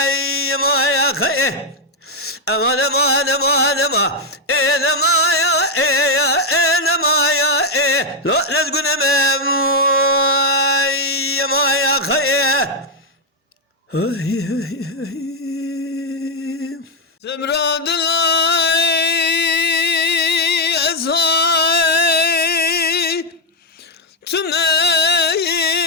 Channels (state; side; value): normal; both; correlation 0.01